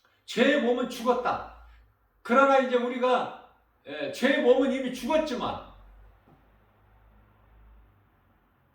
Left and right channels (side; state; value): both; identical; correlation 1.00